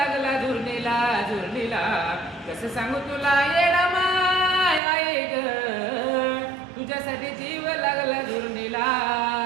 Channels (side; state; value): left; drops out; at 4.8 s